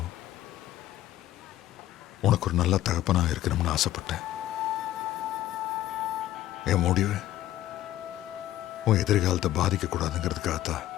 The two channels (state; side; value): quieter; right; 13.7 dB